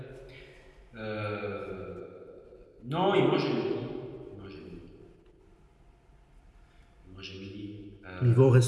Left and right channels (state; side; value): identical; both; correlation 1.00